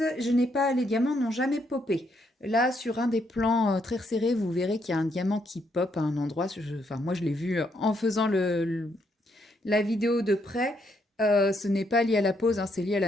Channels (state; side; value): normal; both; correlation 0.75